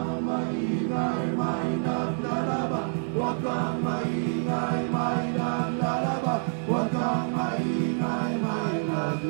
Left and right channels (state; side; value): silent; left; digital silence